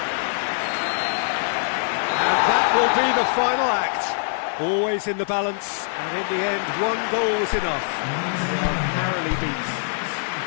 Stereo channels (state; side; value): silent; right; digital silence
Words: And that will be the final act. Always in the balance, and in the end, one goal was enough. They are narrowly beat.